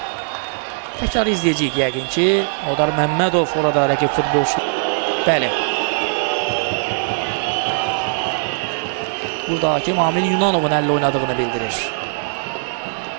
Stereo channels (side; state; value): left; silent; digital silence